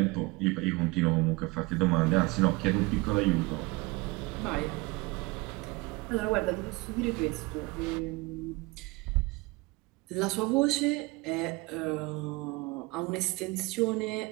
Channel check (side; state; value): left; quieter; 23.8 dB